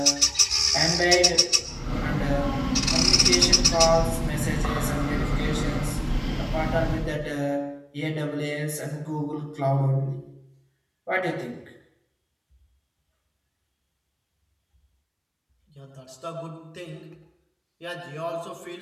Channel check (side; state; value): both; identical; correlation 1.00